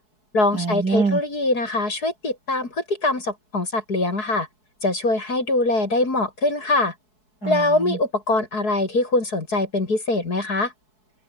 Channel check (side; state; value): right; late; 4.7 ms